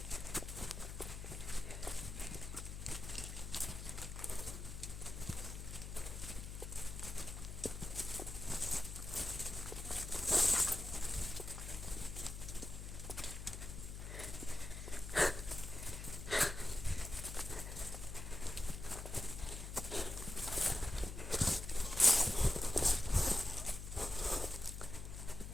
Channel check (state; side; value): noise; left; hum, 8 dB below the sound